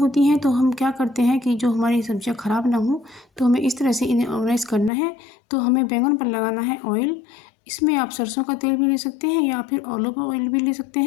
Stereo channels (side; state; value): right; drops out; at 4.9 s